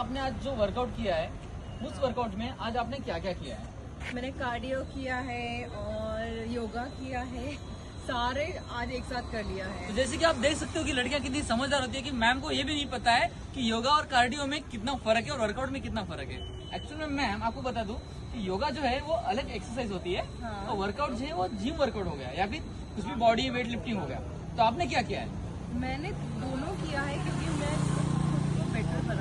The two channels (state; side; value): identical; both; correlation 1.00